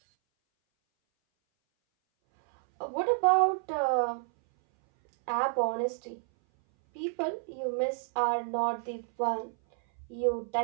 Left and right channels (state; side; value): silent; left; 58 dB below the other